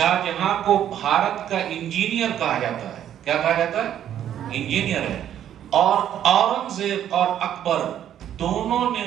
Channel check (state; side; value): quieter; left; 10.5 dB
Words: جہاں کو بھارت کا انجینئر کہا جاتا ہے۔ کیا کہا جاتا ہے؟ انجینئر ہے۔ اور اورنگزیب اور اکبر دونوں نے